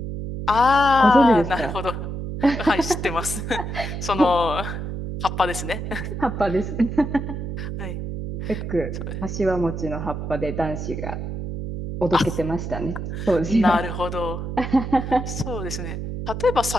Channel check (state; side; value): noise; right; hum, 5 dB below the sound